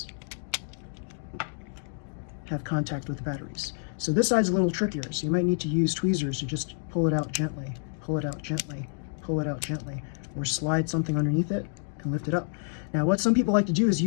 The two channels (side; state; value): right; silent; digital silence